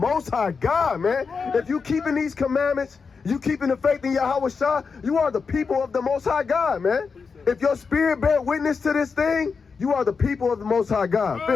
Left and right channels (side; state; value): right; quieter; 5.2 dB